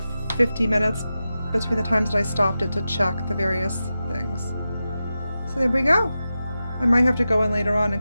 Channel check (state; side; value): inverted; both; correlation -0.92